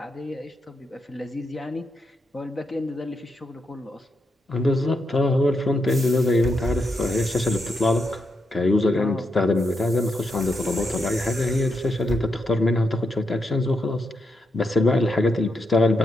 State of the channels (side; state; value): both; normal; correlation 0.83